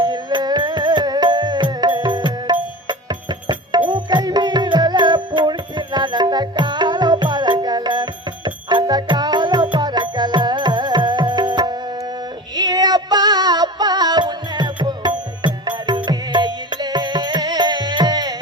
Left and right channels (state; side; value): normal; both; correlation 0.33